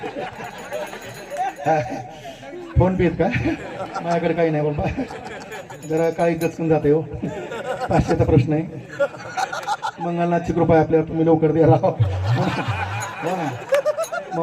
फोन पे का माझ्याकडे काही नाही बाबा जरा काही दचकून जाते हो 500चा प्रश्न आहे. मंगलनाथची कृपा आपल्याला तुम्ही लवकर द्या राहा हो ना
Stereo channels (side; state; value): both; identical; correlation 1.00